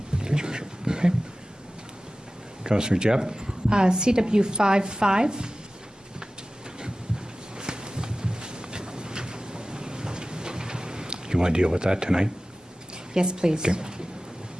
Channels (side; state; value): both; normal; correlation 0.96